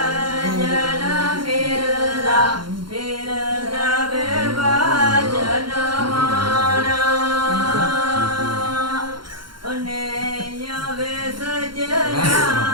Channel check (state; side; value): late; left; 0.72 ms